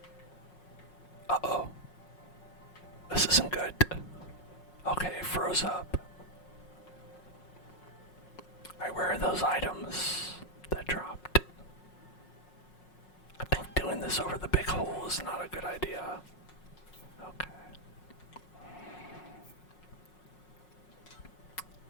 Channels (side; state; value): right; late; 5.5 ms